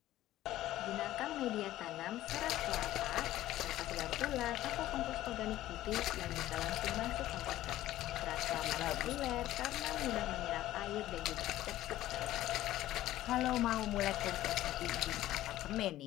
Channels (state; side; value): quieter; right; 14.6 dB